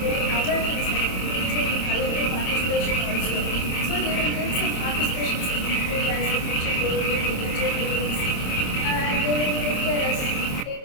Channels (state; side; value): late; right; 27 ms